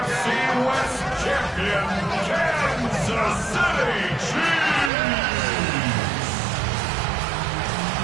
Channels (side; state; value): left; drops out; at 4.9 s